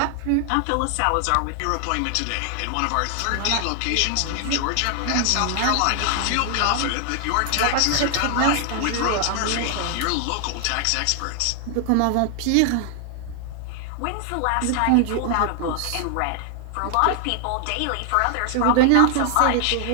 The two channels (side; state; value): both; different; correlation 0.00